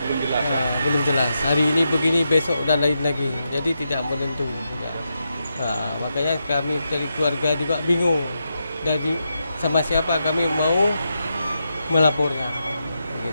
Belum jelas, ya? Belum jelas. Hari ini begini, besok dan lain lagi. Jadi tidak menentu. Ya. Makanya kami dari keluarga juga bingung. Dari sama siapa kami mau melapornya.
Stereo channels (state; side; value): inverted; both; correlation -0.85